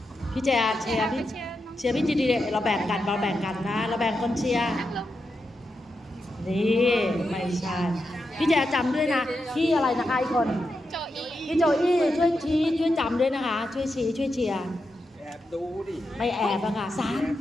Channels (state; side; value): normal; both; correlation 0.87